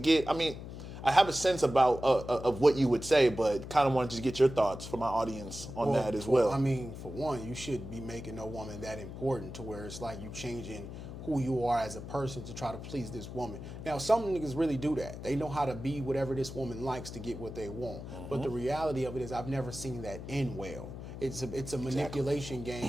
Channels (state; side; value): noise; left; hum, 10 dB below the sound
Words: I have a sense about of what you would say, but kind of wanted to get your thoughts for my audience on that as well. For one, you shouldn't be making no woman that important to where it's like you changing who you are as a person to try to please this woman. Now, some niggas really do that. They know how to be whatever this woman likes to get what they want. But the reality of it is I've never seen that end well. It's a manipulation